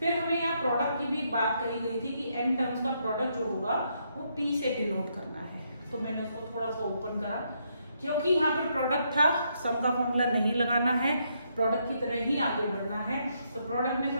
हमें यहाँ प्रोडक्ट की भी एक बात कही गई थी कि n टर्म्स का प्रोडक्ट जो होगा वो p से डिनोट करना है, तो मैंने उसको थोड़ा सा ओपन करा क्योंकि यहाँ पर प्रोडक्ट था, सम का फॉर्मूला नहीं लगाना है, प्रोडक्ट की तरह ही आगे बढ़ना है। तो प्रोडक्ट में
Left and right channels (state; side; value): inverted; both; correlation -0.76